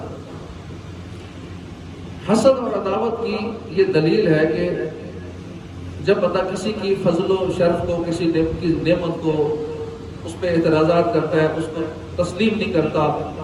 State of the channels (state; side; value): identical; both; correlation 1.00